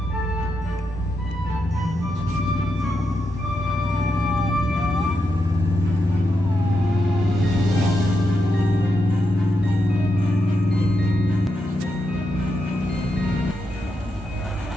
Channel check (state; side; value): normal; both; correlation 0.85